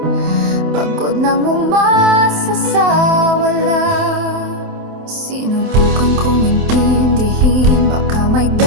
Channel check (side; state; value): left; late; 27 ms